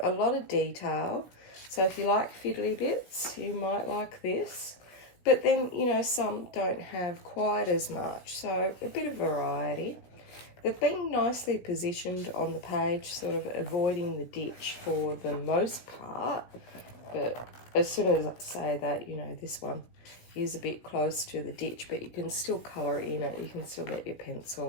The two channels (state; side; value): late; right; 16 ms